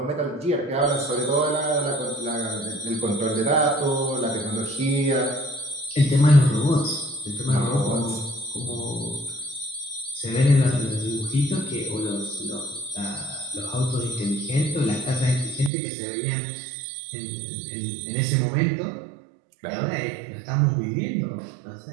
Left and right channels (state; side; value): drops out; left; at 15.7 s